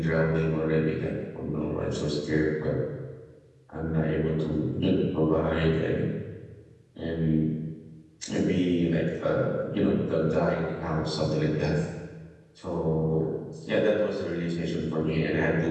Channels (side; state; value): both; identical; correlation 1.00